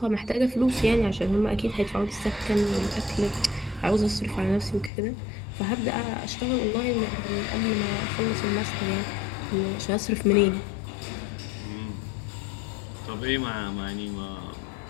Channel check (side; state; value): right; drops out; at 4.9 s